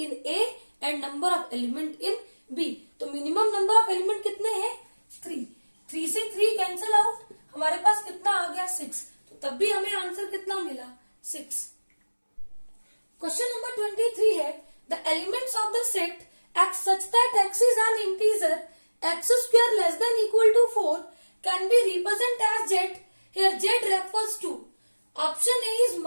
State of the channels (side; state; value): both; inverted; correlation -1.00